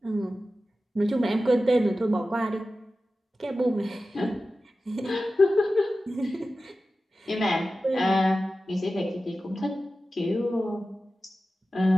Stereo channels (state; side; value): normal; both; correlation 0.94